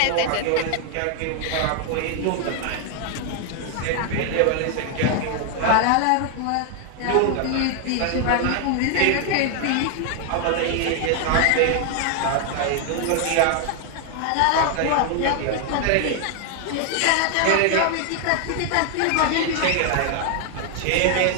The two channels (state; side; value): different; both; correlation 0.00